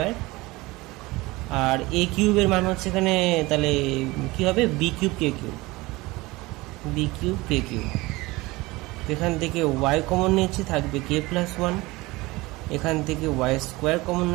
আর এ কিউবের মান হচ্ছে এখানে, তাহলে কি হবে B cube k cube, B cube k cube. এখান থেকে ওয়াই কমন নিচ্ছি, থাকবে কে প্লাস ওয়ান। এখান থেকে ওয়াই স্কোয়ার কমন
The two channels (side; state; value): left; quieter; 21.4 dB